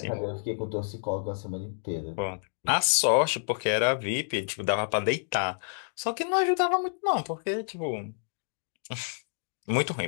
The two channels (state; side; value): silent; right; digital silence